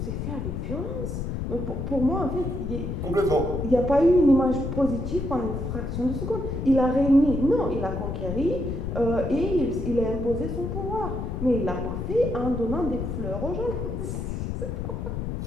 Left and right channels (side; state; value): left; noise; rumble, 4 dB below the sound